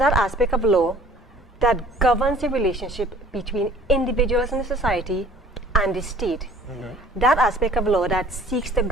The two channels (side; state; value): both; normal; correlation 0.51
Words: aspect of law that governs the relationship between individuals in the society and the state. That aspect of law that seeks to